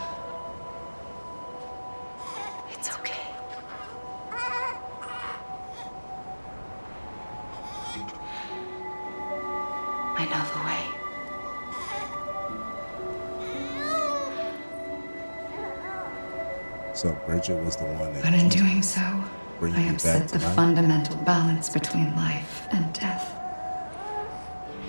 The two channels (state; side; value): inverted; both; correlation -1.00